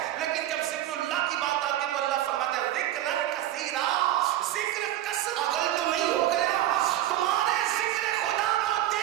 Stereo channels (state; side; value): quieter; left; 13.1 dB